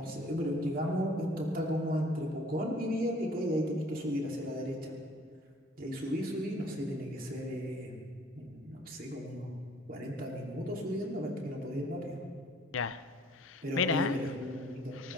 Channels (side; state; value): both; normal; correlation 0.56